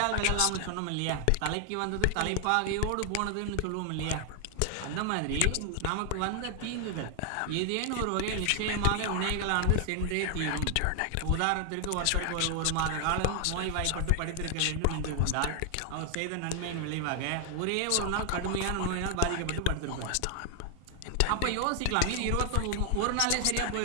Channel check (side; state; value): both; different; correlation 0.00